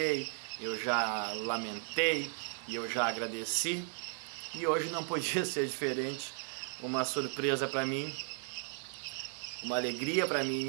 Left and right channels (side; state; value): left; silent; 54 dB below the other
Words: eu já lamentei e eu já agradeci. E hoje não podia ser diferente, uma surpresa para mim, uma alegria para mim